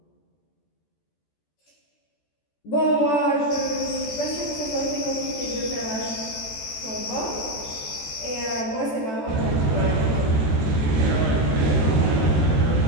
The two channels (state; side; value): late; right; 14 ms